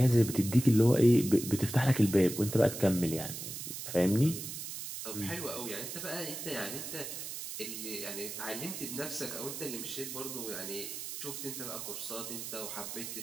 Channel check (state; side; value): noise; right; hiss, 7 dB below the sound